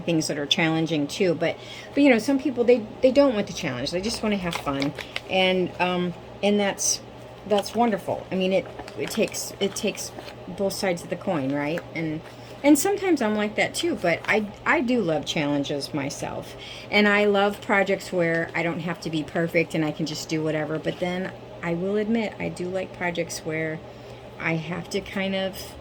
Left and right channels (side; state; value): both; identical; correlation 1.00